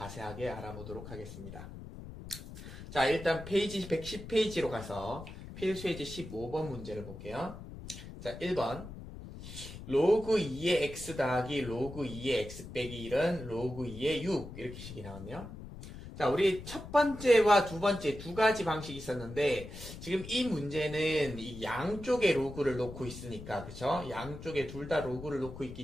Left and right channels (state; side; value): noise; left; rumble, 12 dB below the sound